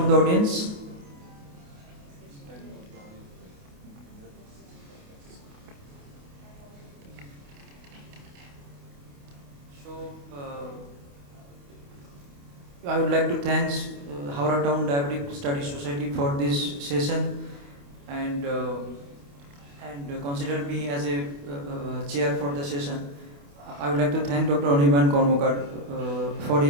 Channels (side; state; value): left; late; 28 ms